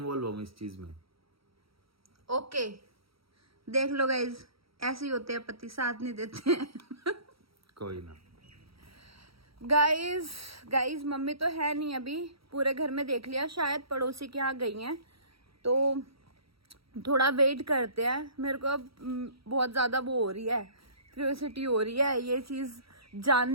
हूँ इस चीज में। ओके देख लो गाइज, ऐसे ही होते हैं पति, साथ नहीं देते हैं। कोई ना। गाइज मम्मी तो है नहीं अभी, पूरे घर में देख लिया, शायद पड़ोसी के यहाँ गई हैं, तो थोड़ा वेट करते हैं। मेरे को अब बहुत ज्यादा वो हो रही है, क्यूरियोसिटी हो रही है ये चीज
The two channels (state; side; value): late; left; 0.75 ms